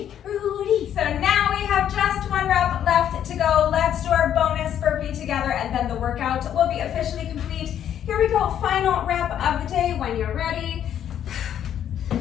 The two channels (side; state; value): right; quieter; 10.0 dB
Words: Rudy. So now we have just one rep left to go. Let's do our bonus burpee together, and then the workout will be officially complete. Here we go, final rep of the day when you're ready.